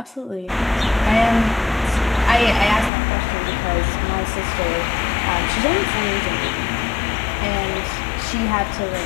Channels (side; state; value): right; drops out; at 2.9 s